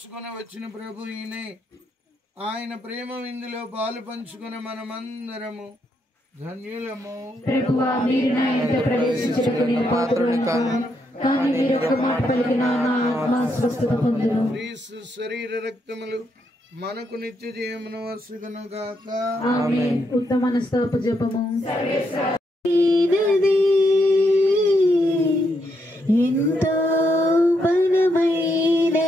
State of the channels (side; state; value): both; normal; correlation 0.79